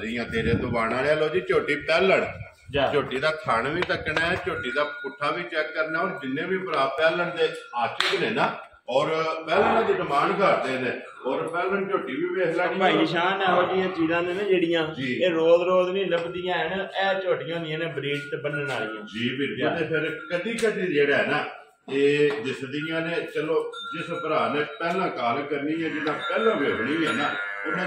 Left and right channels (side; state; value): both; identical; correlation 1.00